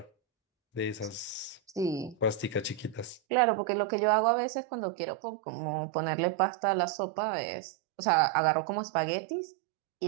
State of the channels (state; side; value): drops out; left; at 3.2 s